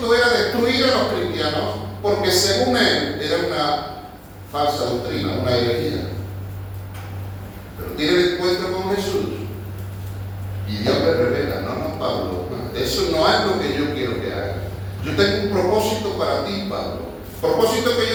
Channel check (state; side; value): identical; both; correlation 1.00